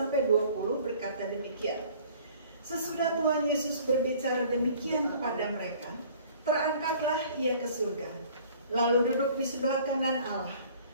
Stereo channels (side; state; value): both; inverted; correlation -0.52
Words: 20 berkata demikian. Sesudah Tuhan Yesus berbicara demikian kepada mereka, terangkatlah ia ke surga, lalu duduk di sebelah kanan Allah.